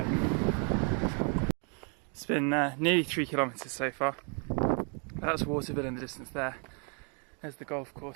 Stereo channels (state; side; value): quieter; left; 38.7 dB